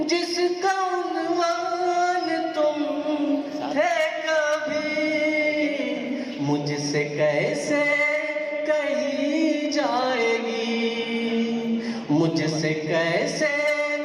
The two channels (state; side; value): identical; both; correlation 1.00